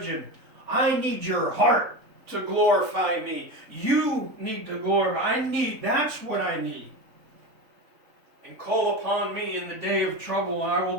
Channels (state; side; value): late; left; 3.5 ms